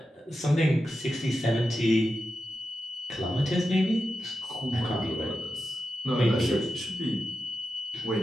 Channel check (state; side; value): normal; both; correlation 0.90